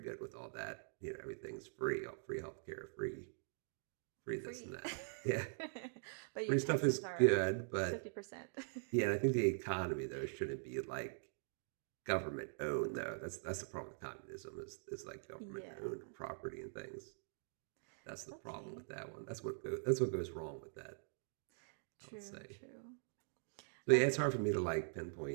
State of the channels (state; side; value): silent; left; digital silence